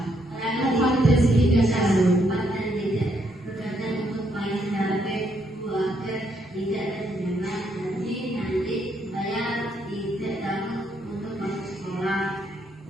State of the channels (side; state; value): both; normal; correlation 0.74